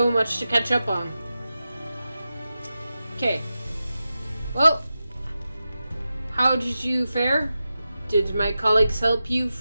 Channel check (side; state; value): both; inverted; correlation -0.92